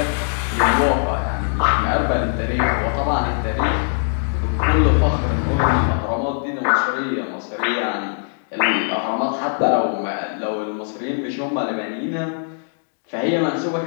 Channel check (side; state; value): right; silent; 65 dB below the other